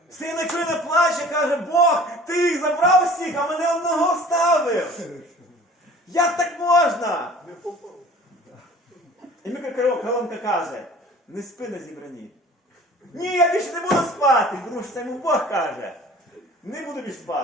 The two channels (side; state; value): both; normal; correlation 0.47